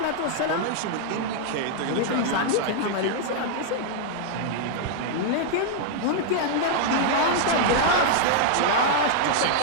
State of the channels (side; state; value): both; different; correlation -0.01